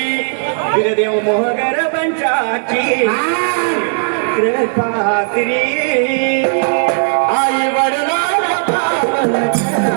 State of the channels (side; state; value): left; silent; digital silence